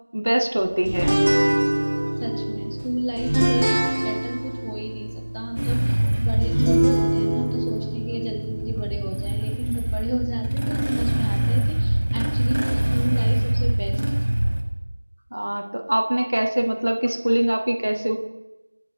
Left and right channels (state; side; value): inverted; both; correlation -1.00